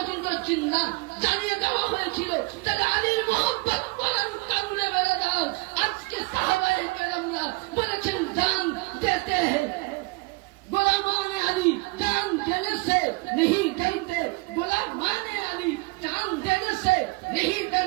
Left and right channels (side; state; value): left; quieter; 26.5 dB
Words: বলেছেন না, জানিয়ে দেওয়া হয়েছিল তাহলে আলীর মোহাম্মত করার কারণে বেড়ে দাও। আজকে সাহাবায়ে কেরামরা বলেছেন জান দেতে हैं गुलामान अली जान देने से नहीं डरते, गुलामान अली जान देने से नहीं